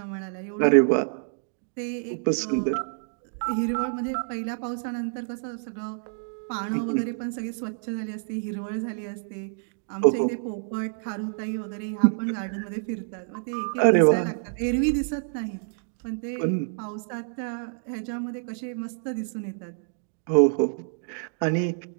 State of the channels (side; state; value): left; silent; digital silence